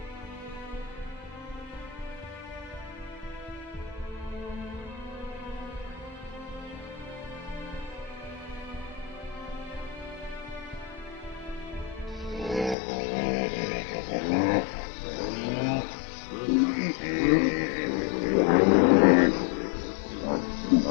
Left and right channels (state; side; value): drops out; right; at 12.8 s